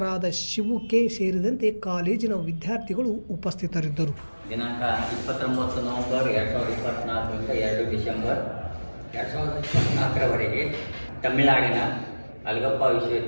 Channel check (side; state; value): both; inverted; correlation -1.00